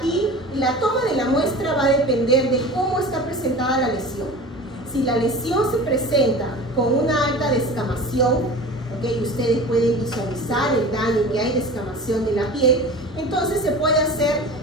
la toma de la muestra va a depender de cómo está presentada la lesión. Si la lesión se presenta con una alta descamación, ¿okay?, ustedes pueden visualizar el daño que hay de descamación de la piel, entonces se puede hacer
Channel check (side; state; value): both; normal; correlation 0.36